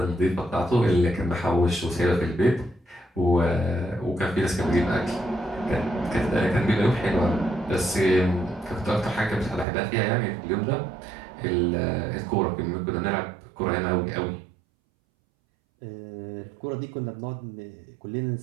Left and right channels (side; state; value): left; drops out; at 9.7 s